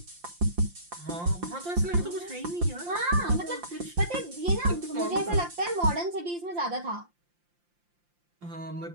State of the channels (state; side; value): late; left; 5.8 ms